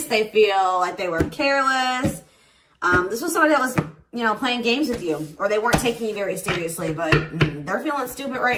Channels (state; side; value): identical; both; correlation 1.00